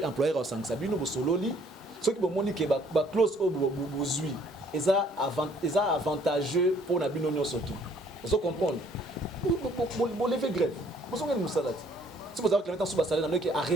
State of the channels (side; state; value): both; normal; correlation 0.61